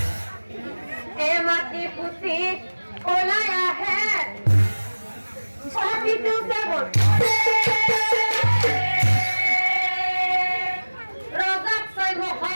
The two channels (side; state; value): both; inverted; correlation -1.00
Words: এই মাটি পুতি ওলাই আহে প্ৰতিটো কেৱল ৰজাক চাই